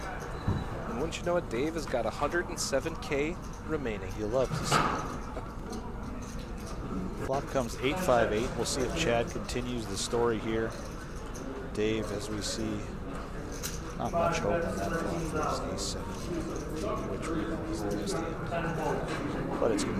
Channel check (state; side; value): identical; both; correlation 1.00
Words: And wouldn't you you know what? Dave has got 107K remaining. You love to see it. Flop comes 8-5-8. We'll see if Chad continues the story here. Dave, as we see, not much hope on that flop for his ace-7, which we know is the best hand. But it's going